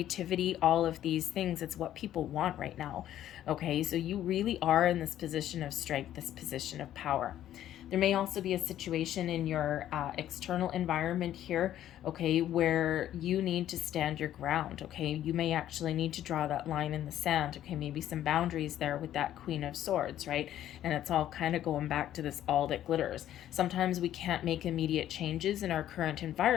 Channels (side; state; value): right; quieter; 12.0 dB